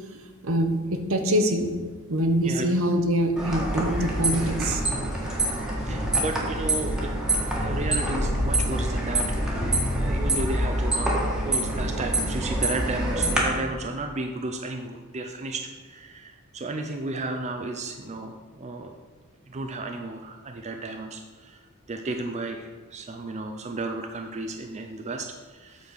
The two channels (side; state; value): both; normal; correlation 0.42